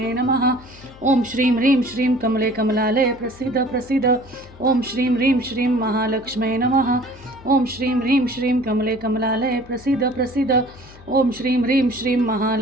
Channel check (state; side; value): noise; left; hum, 21 dB below the sound